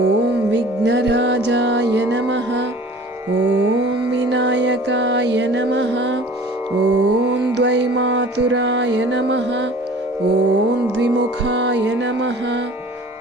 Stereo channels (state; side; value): normal; both; correlation 0.45